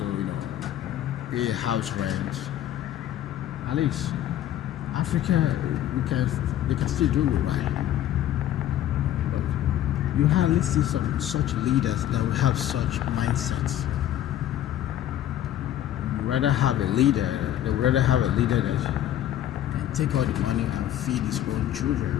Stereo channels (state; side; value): quieter; right; 12.0 dB